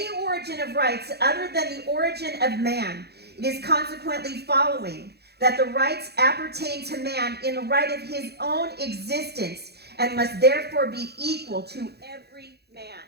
origin of rights other than the origin of man. It is consequently following that the rights appertain to man in the right of his own existence and must therefore be equal to every man.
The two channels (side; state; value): left; late; 0.48 ms